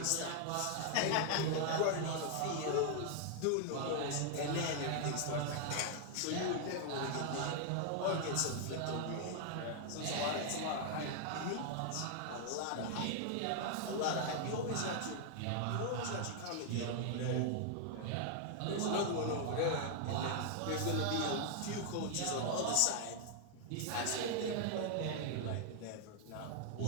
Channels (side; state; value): both; different; correlation 0.00